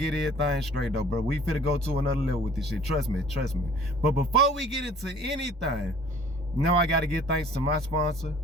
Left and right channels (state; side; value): normal; both; correlation 0.51